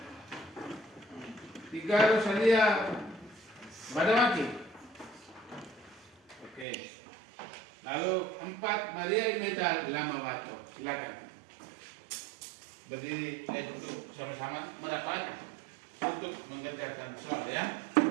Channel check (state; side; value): drops out; left; at 6.7 s